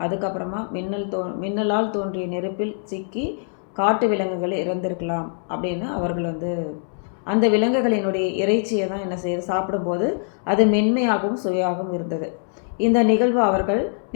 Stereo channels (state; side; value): silent; right; 63 dB below the other